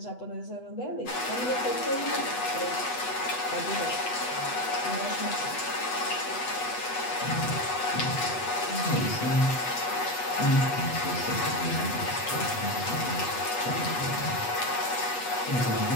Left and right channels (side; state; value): right; late; 8.1 ms